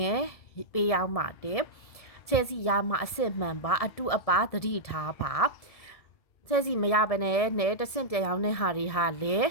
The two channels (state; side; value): late; right; 1.7 ms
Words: ဲ့ပေးရောက်ပါတယ်ချဲစီရမှာအစစ်မှန်ပါအတုအပါသတိထားပါချဲစီမရဘဲနဲ့တဆင့်ပြန်ရောက်တဲ့ဟာတွေဟာလေ